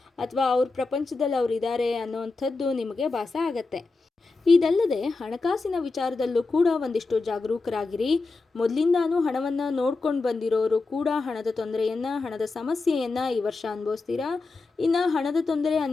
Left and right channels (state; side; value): quieter; right; 3.8 dB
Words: ಅಥವಾ ಅವ್ರ ಪ್ರಪಂಚದಲ್ಲಿ ಅವರಿದ್ದಾರೆ ಅನ್ನೋವಂಥದ್ದು ನಿಮಗೆ ಭಾಸ ಆಗತ್ತೆ. ಇದಲ್ಲದೆ ಹಣಕಾಸಿನ ವಿಚಾರದಲ್ಲೂ ಕೂಡ ಒಂದಿಷ್ಟು ಜಾಗರೂಕರಾಗಿರಿ. ಮೊದಲಿಂದಾನು ಹಣವನ್ನು ನೋಡ್ಕೊಂಡು ಬಂದಿರೋರು ಕೂಡ ಹಣದ ತೊಂದರೆಯನ್ನು, ಹಣದ ಸಮಸ್ಯೆಯನ್ನು ಈ ವರ್ಷ ಅನುಭವಿಸ್ತೀರಾ. ಇನ್ನು ಹಣದ ತೊಂದರೆ